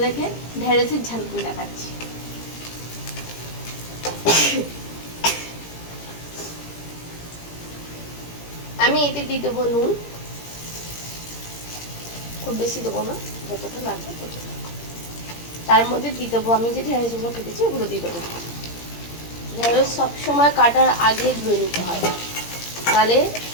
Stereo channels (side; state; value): right; late; 17 ms